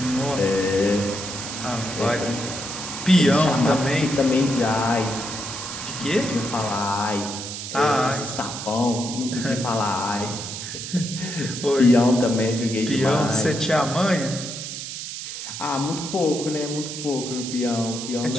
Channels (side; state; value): right; noise; hiss, 7 dB below the sound